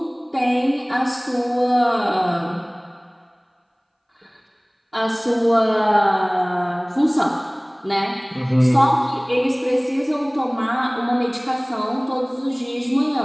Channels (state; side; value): identical; both; correlation 1.00